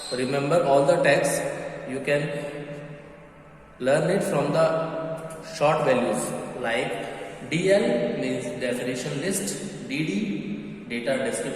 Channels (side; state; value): both; identical; correlation 1.00